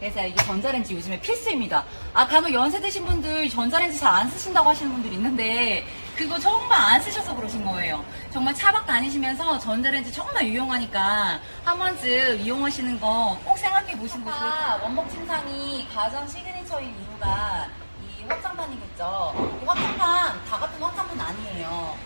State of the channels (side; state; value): both; inverted; correlation -1.00